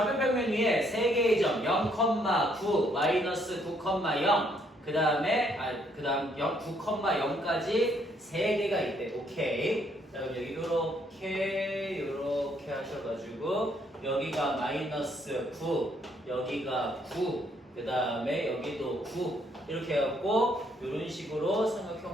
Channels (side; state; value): both; normal; correlation 0.69